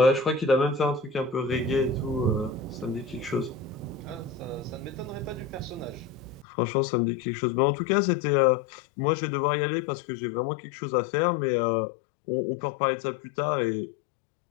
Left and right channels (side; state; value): right; drops out; at 6.5 s